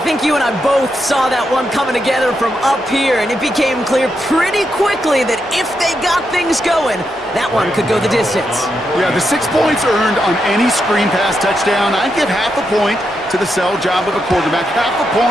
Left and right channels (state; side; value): normal; both; correlation 0.83